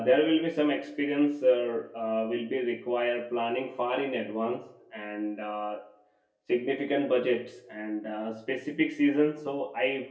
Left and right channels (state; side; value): identical; both; correlation 1.00